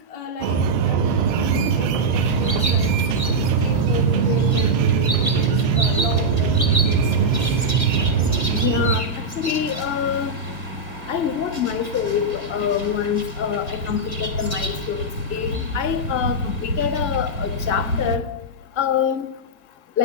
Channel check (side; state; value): right; late; 1.7 ms